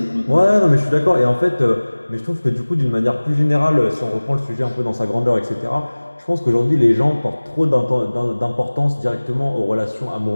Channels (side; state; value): both; inverted; correlation -1.00